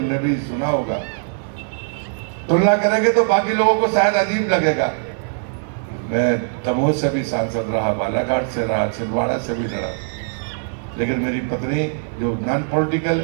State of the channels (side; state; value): left; silent; 58 dB below the other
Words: भी सुना होगा। तुलना करेंगे तो बाकी लोगों को शायद अजीब लगेगा। मैं दमोह से भी सांसद रहा, बालाघाट से रहा, छिंदवाड़ा से भी लड़ा, लेकिन मेरी पत्नी जो नॉन पॉलिटिकल,